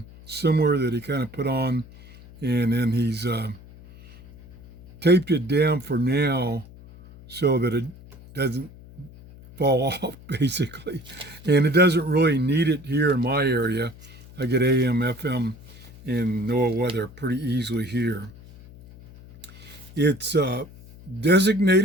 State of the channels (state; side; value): noise; left; hum, 20 dB below the sound